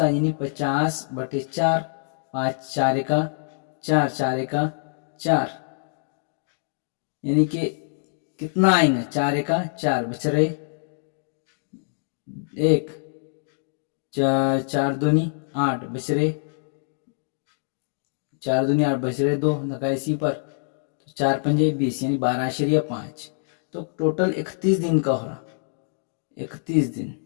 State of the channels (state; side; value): silent; right; digital silence